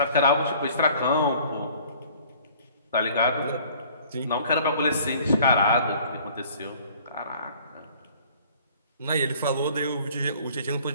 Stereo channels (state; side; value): inverted; both; correlation -0.52